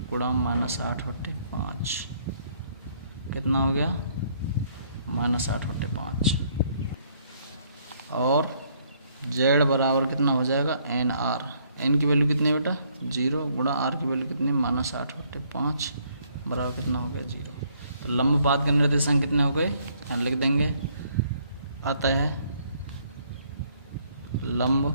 गुणा -8/5, कितना हो गया, -8/5। और जेड बराबर कितना हो जाएगा, एन आर, एन की वैल्यू कितनी है बेटा, 0 गुणा आर की वैल्यू कितनी है, -8/5 बराबर कितना हो गया, 0। तो लंबपात के निर्देशांक कितने हो गए, यहाँ लिख देंगे, अतः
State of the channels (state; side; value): inverted; both; correlation -0.66